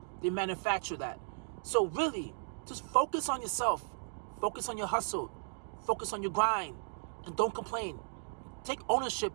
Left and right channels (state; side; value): silent; left; digital silence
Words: They manufacture that. So really, just focus on yourself. Focus on your hustle. Focus on your grind. And don't complain. Take ownership